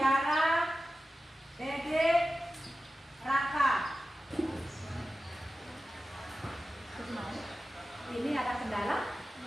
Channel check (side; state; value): both; normal; correlation 0.94